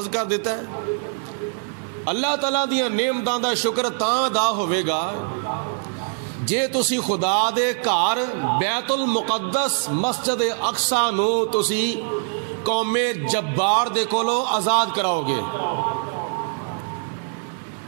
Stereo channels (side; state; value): left; silent; 63 dB below the other